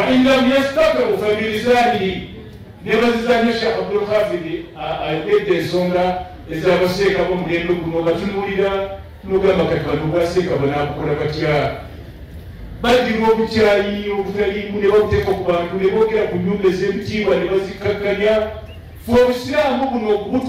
lam yastatiru fabilisanihi nebazizanya shekh abdulhafidi ayogedde ensonga ezabaseeka bomulembe guno batunuulira nogamba kati bantu baseeka banakukola batya badima obukyayi obutaliimu ne babuteeka ku bantu ne boogera ku nyumba ez'ebitiibwa ne bazikakkanya fe obusiraamu buno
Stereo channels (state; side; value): identical; both; correlation 1.00